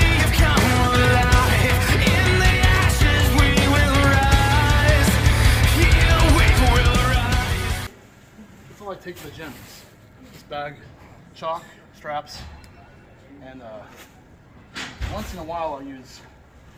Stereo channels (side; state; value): both; identical; correlation 1.00